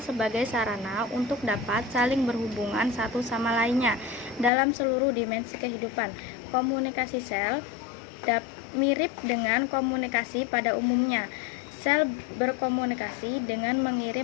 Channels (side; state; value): right; drops out; at 4.5 s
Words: sebagai sarana untuk dapat saling berhubungan satu sama lainnya dalam seluruh dimensi kehidupan. Komunikasi sel mirip dengan komunikasi pada umumnya. Sel berkomunikasi dengan